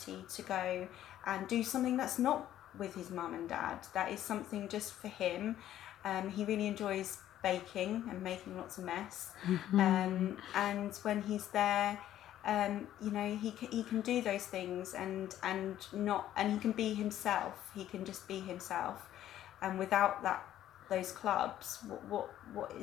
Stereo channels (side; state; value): right; quieter; 12.2 dB